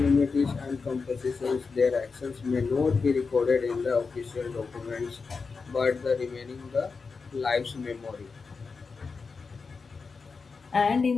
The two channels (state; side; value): quieter; right; 4.8 dB